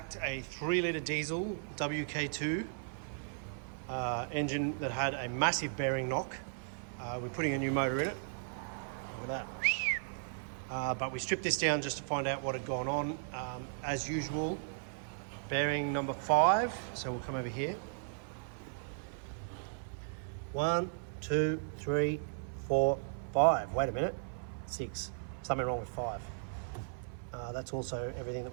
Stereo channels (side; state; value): left; silent; 54 dB below the other